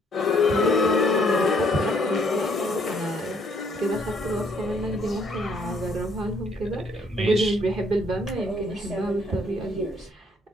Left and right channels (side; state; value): both; normal; correlation 0.66